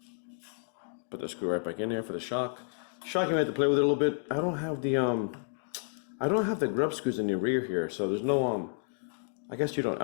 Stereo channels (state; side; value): silent; right; digital silence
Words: Put the screw right back in there for the shock. Shock, you might have to play with it a little bit. I don't have the grub screws in the rear here, so there's no I guess you don't.